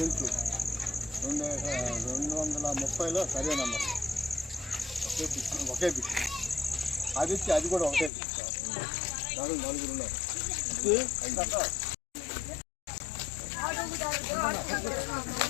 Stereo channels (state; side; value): drops out; right; at 8.1 s